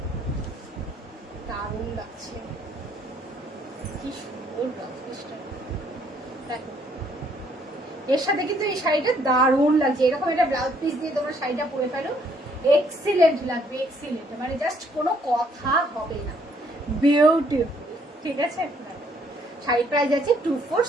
দারুণ লাগছে, কি সুন্দর ব্লাউজ পিসটা, দেখো এর সাথে কিন্তু এই শাড়িটা দারুণ লাগছে, এরকম একটা ব্লাউজ পিস দিয়ে তোমরা শাড়িটা পরে ফেলো, এক্সিলেন্ট লাগবে, এক্সিলেন্ট, মানে জাস্ট কোনো কথা হবে না, বিউটিফুল, ঠিক আছে। শাড়ি প্রাইস আছে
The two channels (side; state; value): both; normal; correlation 0.66